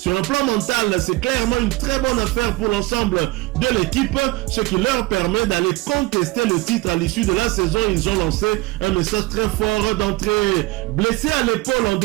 un plan mental, c'est clairement une très bonne affaire pour l'ensemble de l'équipe, ce qui leur permet d'aller contester le titre à l'issue de la saison. Ils ont lancé un message très fort d'entrée. Blessé à l'épaule en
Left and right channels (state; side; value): quieter; left; 20.1 dB